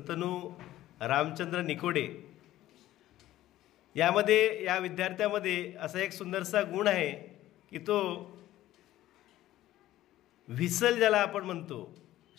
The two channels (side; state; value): right; quieter; 14.6 dB